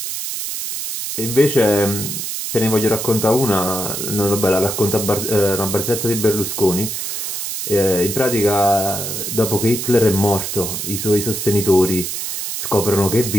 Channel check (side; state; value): right; noise; hiss, 4 dB below the sound